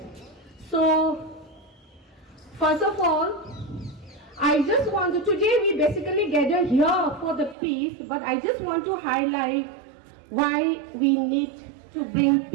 So, first of all, I just want to, today we basically gather here for the peace, but I just want to highlight why we need to bring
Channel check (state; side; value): drops out; left; at 7.6 s